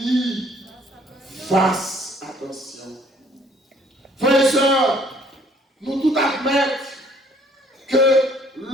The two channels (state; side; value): normal; both; correlation 0.59